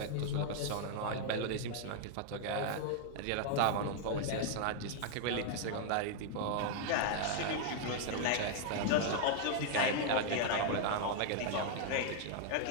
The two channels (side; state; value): both; different; correlation 0.00